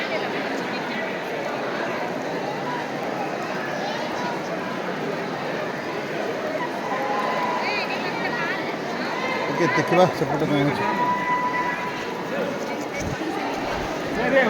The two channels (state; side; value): identical; both; correlation 1.00